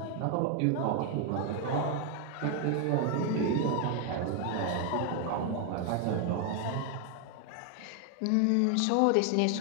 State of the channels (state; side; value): different; both; correlation 0.01